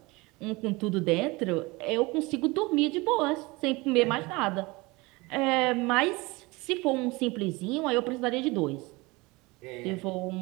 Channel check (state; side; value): quieter; left; 23.8 dB